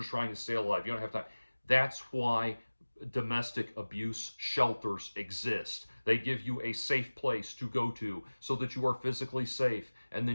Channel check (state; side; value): inverted; both; correlation -1.00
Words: trying to stay alive. You don't have time. That's why domestic abuse shelters exist. They give you a safe place to go to so that you are physically safe, and